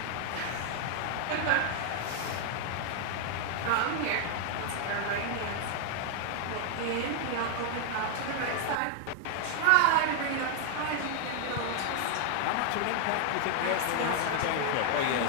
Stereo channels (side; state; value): both; different; correlation 0.00